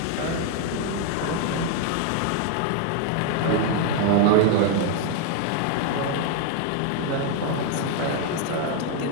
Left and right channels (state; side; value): different; both; correlation 0.01